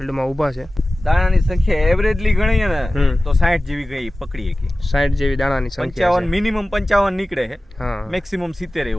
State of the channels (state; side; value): normal; both; correlation 0.96